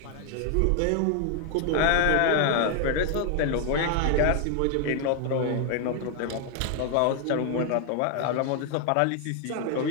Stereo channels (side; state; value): both; different; correlation 0.00